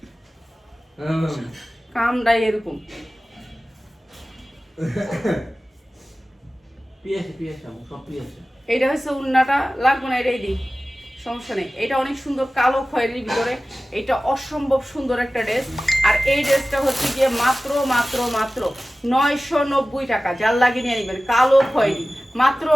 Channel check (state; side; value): normal; both; correlation 0.96